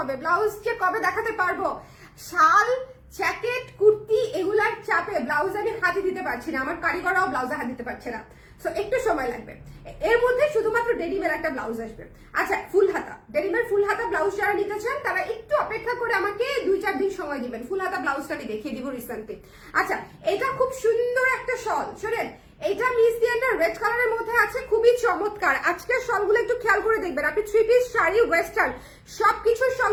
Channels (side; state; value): both; identical; correlation 1.00